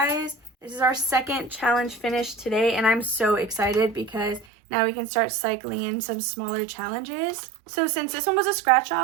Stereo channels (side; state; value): left; drops out; at 4.5 s